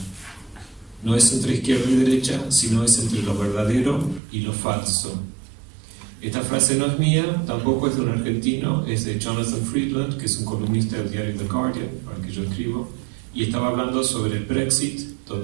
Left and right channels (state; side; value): drops out; left; at 4.2 s